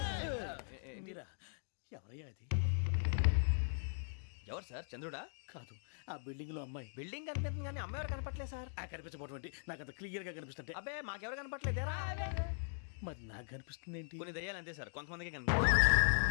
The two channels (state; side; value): silent; right; digital silence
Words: మీరా ఎవరయ్యా అది? ఎవరు సార్? చంద్రుడా? కాదు ఆ బిల్డింగ్ లో అమ్మాయి. బిల్డింగ్ కనిపిస్తుంది కానీ అమ్మ ఎవరు కనపట్లేదు సార్. ఆ కనిపించబోటువంటి నాకు అంత క్లియర్ గా కనిపిస్తుంటే అబ్బే మాకెవరు కనపట్లేదేరా? మరి నాకు కనిపిస్తుంది ఏంటి? కొన్ని దయ్యాలు అంతే సార్, కొంతమందికి కనిపిస్తుంది.